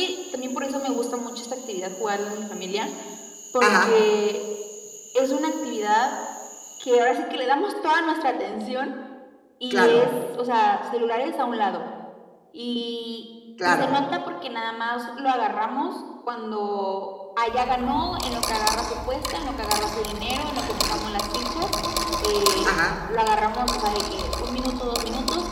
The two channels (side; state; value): both; identical; correlation 1.00